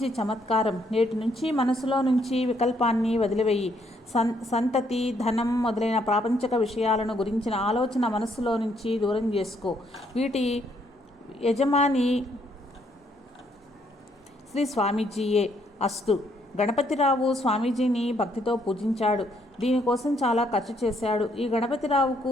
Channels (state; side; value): normal; both; correlation 0.71